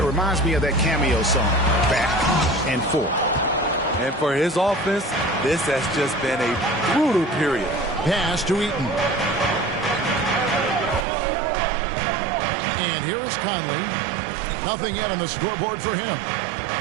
it reminds me of that cameo song, Back and Forth. And for his offense, this has just been a brutal period. Pass to Eaton. And here is Conley. Nothing yet on the scoreboard for him.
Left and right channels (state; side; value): drops out; left; at 11.1 s